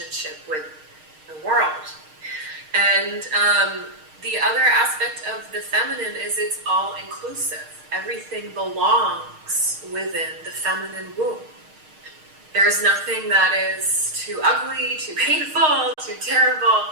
with the world. And the other aspect of the feminine is it's all inclusive. Everything belongs within the feminine womb. There's nothing that is too ugly, too painful, too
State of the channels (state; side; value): late; left; 6.5 ms